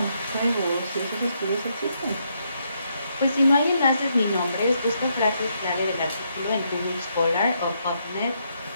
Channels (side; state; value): both; inverted; correlation -0.76